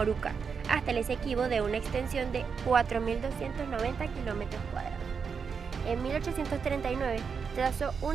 hasta el Esequibo, de una extensión de 4.290 kilómetros cuadrados. En 1839 trazó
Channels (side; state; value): left; quieter; 6.0 dB